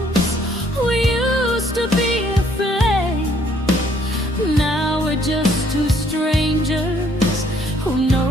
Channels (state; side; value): normal; both; correlation 0.64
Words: we used to be a flame. Now we're just two strangers who